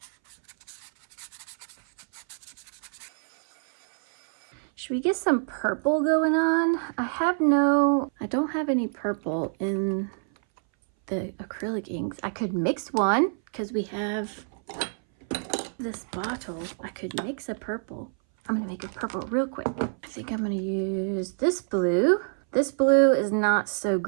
Should we get some purple going on? I don't have any purple in the acrylic inks. I could mix one because we have this bottle. I could mix a purple. I'm gonna make a purple real quick. I think I'm gonna use this blue. This blue is not so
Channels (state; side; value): silent; left; 60 dB below the other